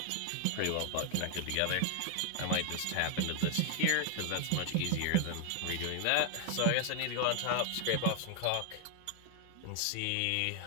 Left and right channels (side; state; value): both; different; correlation 0.00